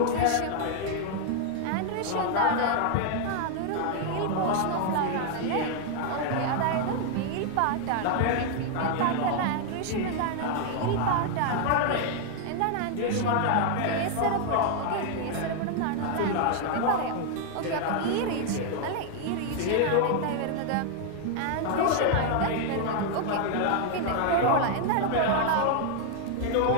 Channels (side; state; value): both; different; correlation 0.00